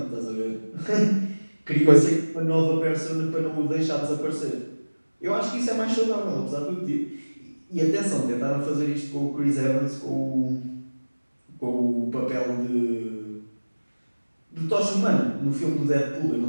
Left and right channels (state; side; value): inverted; both; correlation -1.00